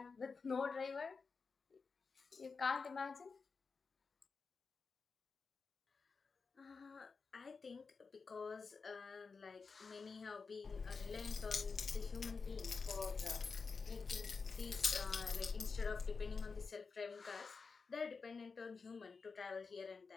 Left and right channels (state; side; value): quieter; right; 4.8 dB